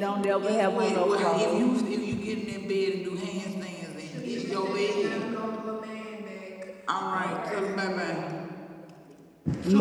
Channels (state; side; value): identical; both; correlation 1.00